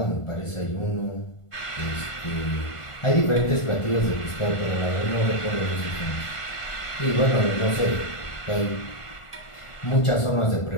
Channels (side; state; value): right; late; 1.5 ms